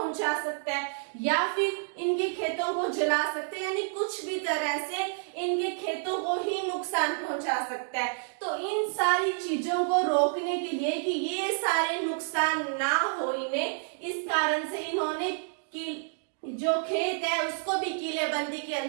सकता है या फिर इनके खेतों को जला सकते हैं, यानी कुछ भी तरह से इनके खेतों को ही नुकसान पहुंचा सकता है। तो इन सारी चीजों को रोकने के लिए कि ये सारे नुकसान ना हो इन्हें, इस कारण से इन्होंने जो खेत है उसको भी किलेबंदी के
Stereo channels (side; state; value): left; silent; digital silence